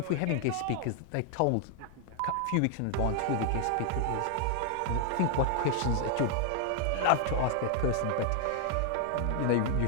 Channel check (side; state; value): both; different; correlation 0.00